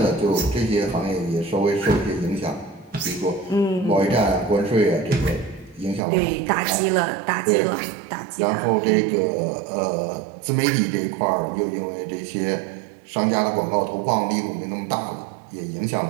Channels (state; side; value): drops out; left; at 6.0 s